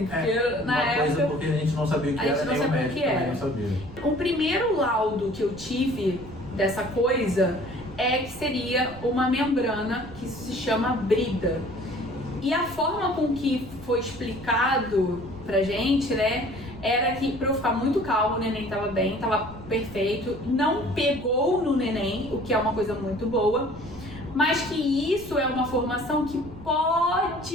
porque na época... porque a gente não sabia o que era, nem o médico também não sabia. O primeiro laudo que eu tive dessa coisa que seria uma membrana que se chama brida. E a forma com que foi explicado pra gente, né, era que pra eu ficar muito calma, o neném tava bem, tava perfeito, não pegou no neném, o que é uma coisa muito boa, mas que isso é uma formação que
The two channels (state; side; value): noise; right; rumble, 17 dB below the sound